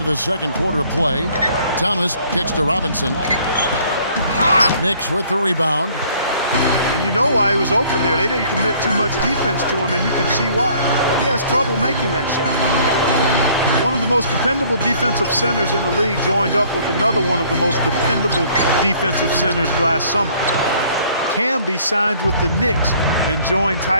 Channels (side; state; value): both; inverted; correlation -0.58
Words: the second quarter of play. Thomas kicks to Robinson. Knicks with the rebound. And you know why he was open there. They didn't commit too much defense to him, and you can see why. He has trouble making that shot. One of the most dependable defensive centers in the league joined up with another one of the most dependable defensive centers last summer. Camby signed with the Knicks and joined